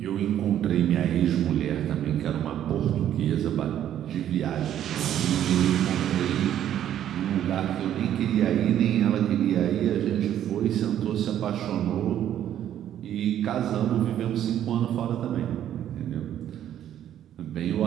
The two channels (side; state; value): left; quieter; 10.9 dB